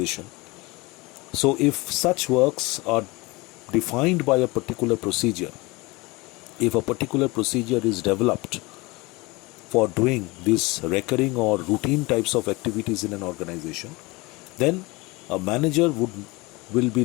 So if such works are defined by a particular procedure, if a particular procedure is developed for doing these recurring or routine types of activities in an organization, then a manager will be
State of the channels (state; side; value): quieter; right; 24.0 dB